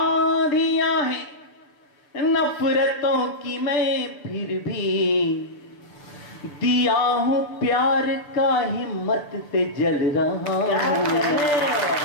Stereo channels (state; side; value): late; right; 6.8 ms